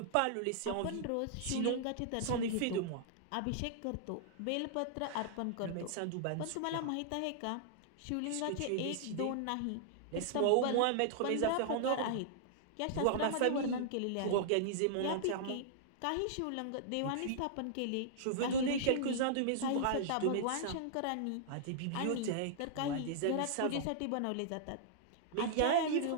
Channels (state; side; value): different; both; correlation -0.01